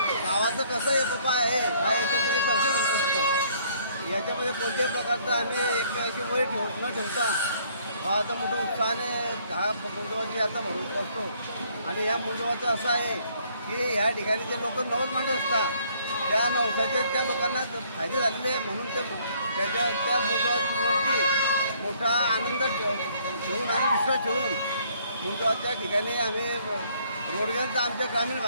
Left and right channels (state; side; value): inverted; both; correlation -0.63